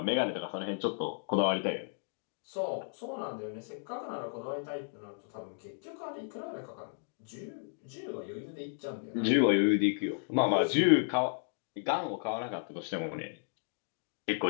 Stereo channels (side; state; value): right; silent; digital silence